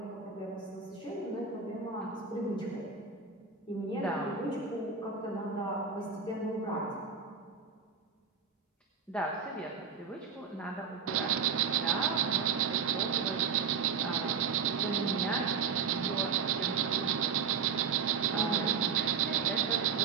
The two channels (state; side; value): quieter; left; 6.0 dB